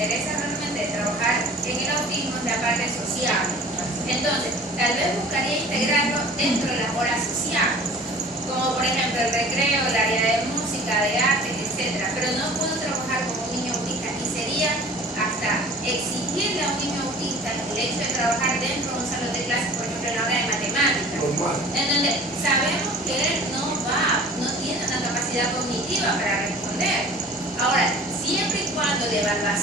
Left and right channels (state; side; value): normal; both; correlation 0.45